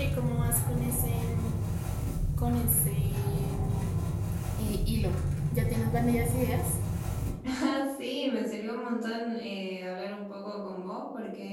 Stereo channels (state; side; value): identical; both; correlation 1.00